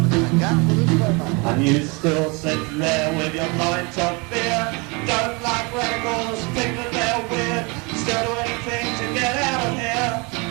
And you still sit there with your pint of beer, don't like radicals, think that they're weird, still do anything to get out of here.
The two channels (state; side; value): quieter; left; 29.2 dB